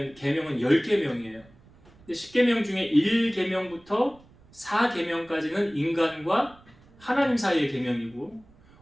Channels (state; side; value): noise; right; rumble, 27 dB below the sound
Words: 10계명이에요. 10계명 중에 1계명부터 4계명까지는 인간과 하나님 사이의 계명이고,